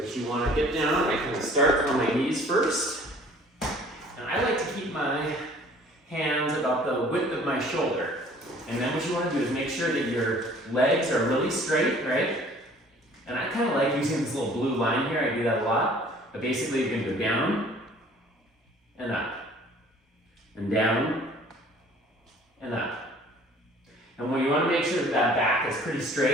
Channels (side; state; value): both; normal; correlation 0.53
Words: you want to get down. I kind of start on my knees first. And I like to keep my hands about the width of my shoulder. And then what you want to do is make sure that your legs are really straight, right? And I kind of like using this little blue line here. I do that a lot. But basically, you're going to go down and up, and down and up. And when you want to make sure that that back is pretty